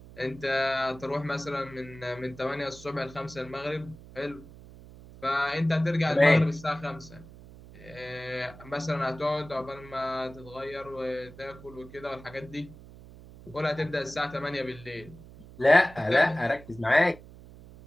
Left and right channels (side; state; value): right; noise; hum, 18 dB below the sound